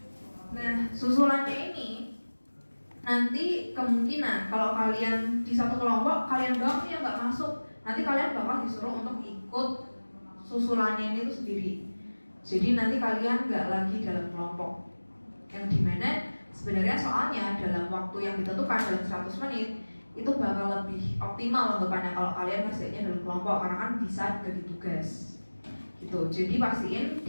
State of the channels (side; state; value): both; inverted; correlation -1.00